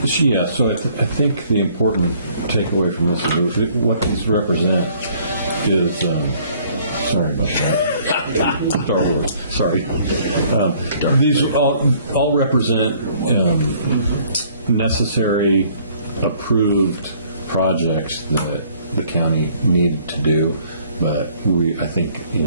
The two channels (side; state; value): both; inverted; correlation -0.60